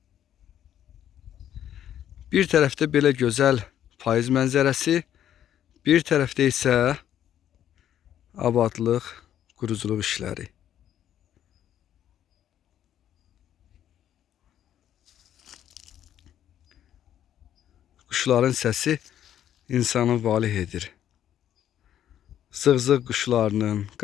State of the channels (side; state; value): right; quieter; 10.7 dB